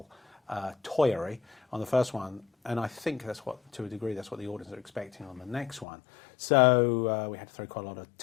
toyery on the first one, and I think to a degree that's what the audience are expecting on the next one. So we had to throw quite a lot of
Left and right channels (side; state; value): right; drops out; at 5.9 s